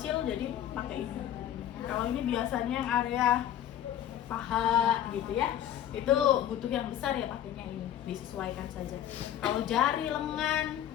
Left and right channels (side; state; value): right; quieter; 11.0 dB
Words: jadi pakai ini. Kalau ini biasanya yang area paha gitu ya, itu butuh yang besar ya pakainya ini, disesuaikan saja. Kalau jari, lengan,